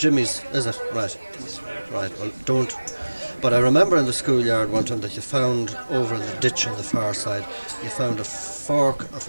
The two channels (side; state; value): both; inverted; correlation -1.00